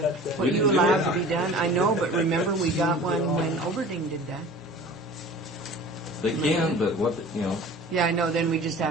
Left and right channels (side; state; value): both; normal; correlation 0.42